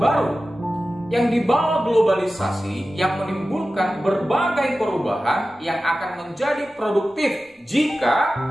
yang dibawa globalisasi yang menimbulkan berbagai perubahan yang akan menjadi produktif jika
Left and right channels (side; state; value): both; normal; correlation 0.94